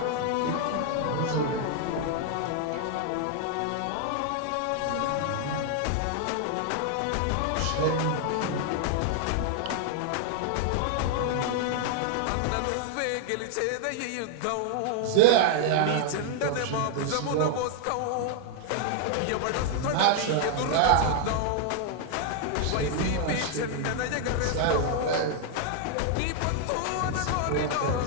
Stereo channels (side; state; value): both; different; correlation 0.00